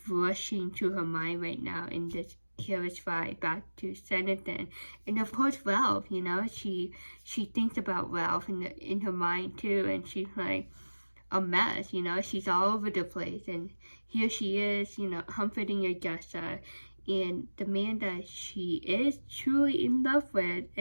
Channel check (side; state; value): both; inverted; correlation -1.00